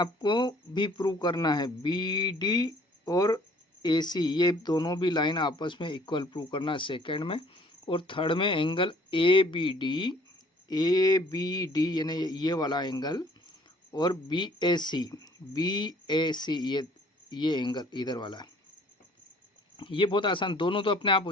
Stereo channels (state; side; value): normal; both; correlation 0.57